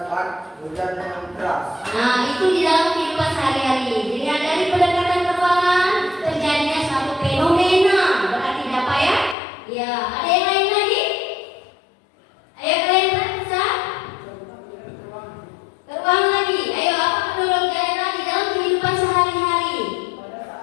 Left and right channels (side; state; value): right; drops out; at 9.3 s